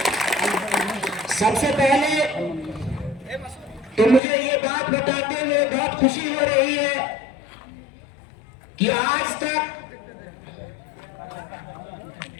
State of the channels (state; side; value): drops out; right; at 4.2 s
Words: सबसे पहले तो मुझे ये बात बताते हुए बहुत खुशी हो रही है कि आज तक